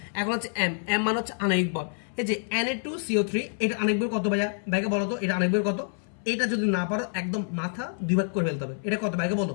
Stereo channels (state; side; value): silent; right; 60 dB below the other